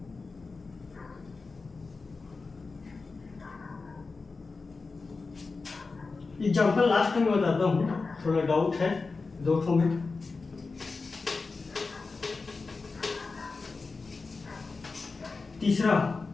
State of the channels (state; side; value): quieter; right; 4.1 dB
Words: एग्जाम्पल लास्ट में बताता हूँ, थोड़ा डाउट है दो ठो में। तीसरा